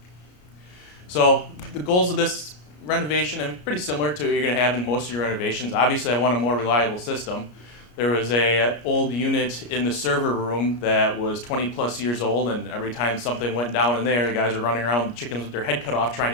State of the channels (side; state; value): right; late; 33 ms